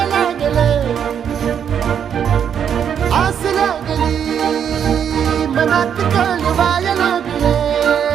लागलं आस लागली मनात कळवायला लागलं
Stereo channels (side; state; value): left; quieter; 8.3 dB